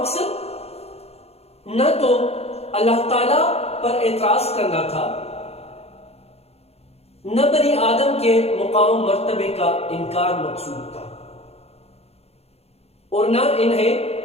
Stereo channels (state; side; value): late; right; 0.30 ms